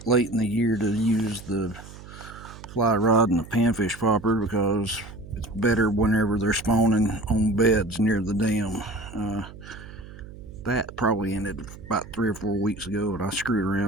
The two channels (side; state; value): right; noise; hum, 16 dB below the sound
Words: late in the year to use the fly rod and the panfish popper because it's better whenever they're spawning on beds near the dam. That probably ended about 3 or 4 weeks ago, and I screwed